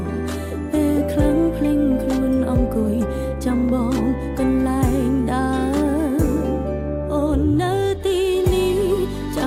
ពេលខ្លាំងភ្លេងខ្លួនអង្គុយចាំបងកន្លែងដើរអូននៅទីនេះច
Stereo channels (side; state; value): both; identical; correlation 1.00